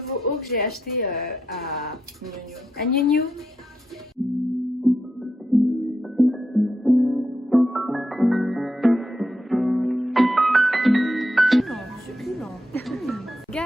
haut que j'ai acheté à New New. Succulent.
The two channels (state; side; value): normal; both; correlation 0.83